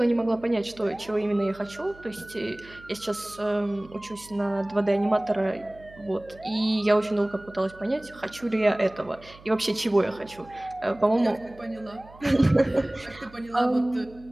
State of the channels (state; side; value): noise; right; hum, 22 dB below the sound